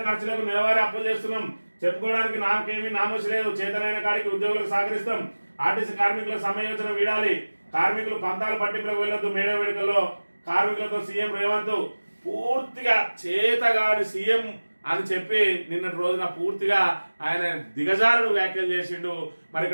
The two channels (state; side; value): inverted; both; correlation -1.00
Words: ఖర్చులకు నెలవారీ అప్పులు చేస్తున్నాం, చెప్పుకోవడానికి నాకేమీ నామోషి లేదు, చేతనైన కాడికి ఉద్యోగులకు సహకరిస్తాం, ఆర్టీసీ కార్మికుల సమ్మె యోచన వీడాలి, కార్మికులు పంతాలు పట్టింపులకు వెళ్ళొద్దు, మేడే వేడుకల్లో కార్మికులతో సీఎం రేవంత్ పూర్తిగా చేతగాని సీఎం అని చెప్పి నిన్నటి రోజున పూర్తిగా ఆయన దిగజారుడు వ్యాఖ్యలు చేసిండు. మరి